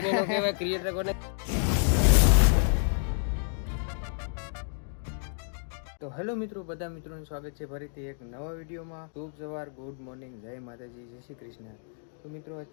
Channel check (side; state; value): right; silent; 58 dB below the other